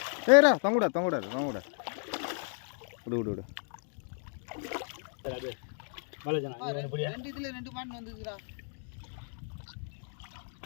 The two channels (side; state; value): right; silent; 56 dB below the other